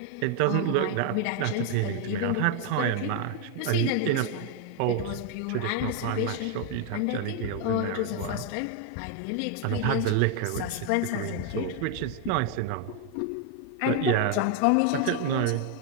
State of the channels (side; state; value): both; different; correlation 0.01